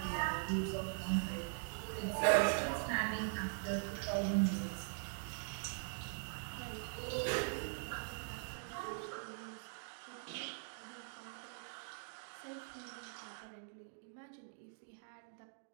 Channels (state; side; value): silent; left; digital silence